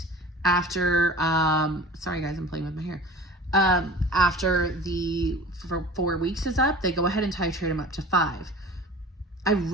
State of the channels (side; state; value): both; normal; correlation 0.40